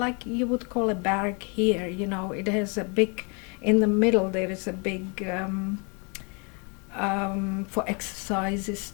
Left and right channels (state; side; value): quieter; right; 34.2 dB